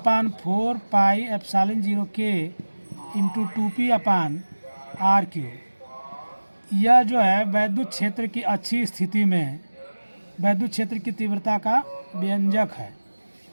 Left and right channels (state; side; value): inverted; both; correlation -1.00